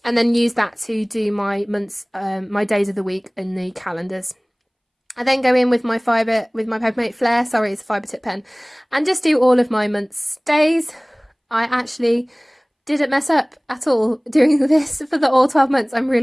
And then use that to do my months, my days of the week in the calendars. I then go in with my Papermate Flare, sorry, it's a fibre tip pen, and just do all of my months' days. I actually didn't mess up at all doing this for all 12 months. I'm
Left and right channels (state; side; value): identical; both; correlation 1.00